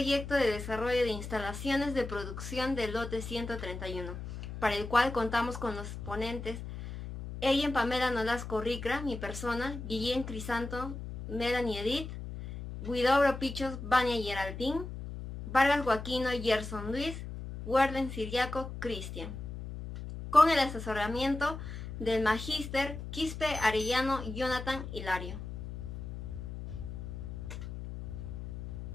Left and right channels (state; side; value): noise; left; hum, 8 dB below the sound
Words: de desarrollo de instalaciones de producción del lote 131, para el cual contamos con los ponentes Ellen Pamela Nolasco Ricra, mi persona, Guillén Crisanto, Melanie Edith, Guidobro Pichos, Vania Geraldine, Vargas Joaquino, Gerson Luis, Warden Siriaco, Cristian, con el asesoramiento del Magíster Quispe Arellano Jonathan Hilario.